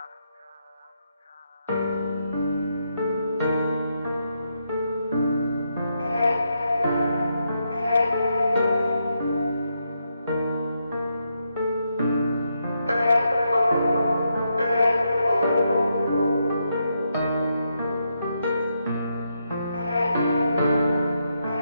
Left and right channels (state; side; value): inverted; both; correlation -0.81